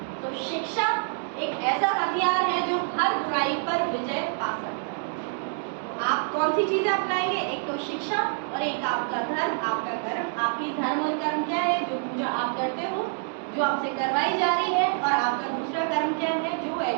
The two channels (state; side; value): silent; left; 58 dB below the other